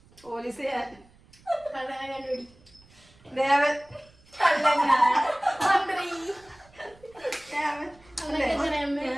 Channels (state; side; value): noise; right; rumble, 28 dB below the sound